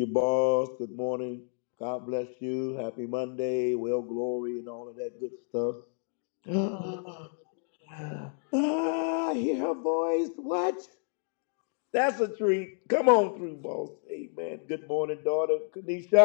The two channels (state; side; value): silent; right; 58 dB below the other